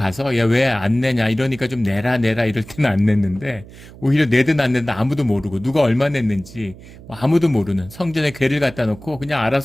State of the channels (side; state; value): right; noise; hum, 19 dB below the sound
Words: 야 왜 안 내냐 이러니까 좀 내라 이럴 때는 안 냈는데 오히려 내든 안 내든 아무도 모르고 누가 얼마 냈는지 아무도 모르는 성전에 괴를 갖다 놓고 그냥